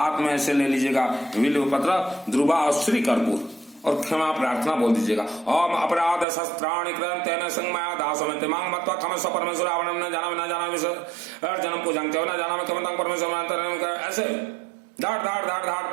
में ऐसे ले लीजिएगा बिल्व पत्र, ध्रुवा और श्री कर्पूर, और क्षमा प्रार्थना बोल दीजिएगा। ओम अपराध शस्त्राणि कृतं तेन संगमया दासमते मांग मत्वा क्षमस्व परमेश्वर आवरणं न जाना विसर जन्म पूजन के न जाना क्षमतां परमेश्वर, ऐसे धाड़ धाड़ धाड़ धाड़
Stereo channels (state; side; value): drops out; left; at 6.2 s